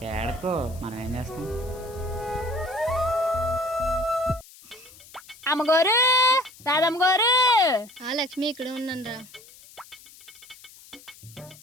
ఏడకో, మనం ఏం చేస్తాం? అమ్మగారు, రాధమ్మ గారు. ఆ లక్ష్మి ఇక్కడ ఉన్నాను రా.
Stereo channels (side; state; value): left; noise; hiss, 21 dB below the sound